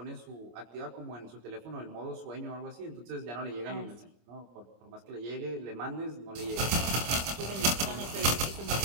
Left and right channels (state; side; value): late; left; 25 ms